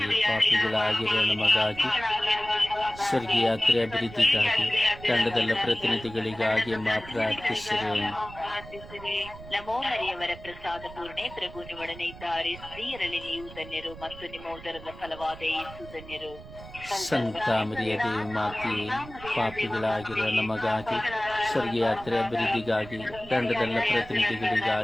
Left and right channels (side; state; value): right; noise; rumble, 16 dB below the sound